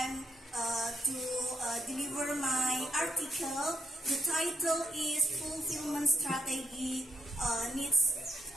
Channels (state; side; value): normal; both; correlation 0.76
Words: to deliver my article. The title is Fulfillment Strategy Needs